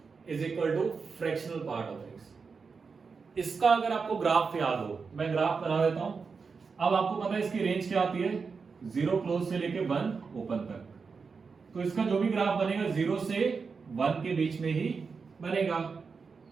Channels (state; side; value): quieter; left; 5.1 dB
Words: is equal to fractional part of x, इसका अगर आपको ग्राफ याद हो, मैं ग्राफ बना देता हूं। अब आपको पता है इसकी रेंज क्या आती है, 0 क्लोज से लेके 1 ओपन तक। तो इसका जो भी ग्राफ बनेगा 0 से 1 के बीच में ही बनेगा,